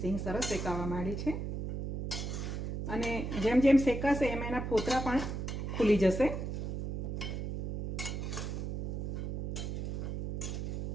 સરસ શેકાવા માંડી છે અને જેમ જેમ શેકાશે એમ એના ફોતરા પણ ખુલી જશે.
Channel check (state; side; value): noise; right; hum, 3 dB below the sound